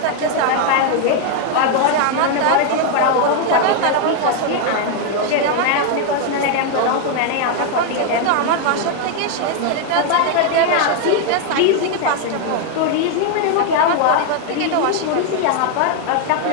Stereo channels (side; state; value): both; different; correlation 0.00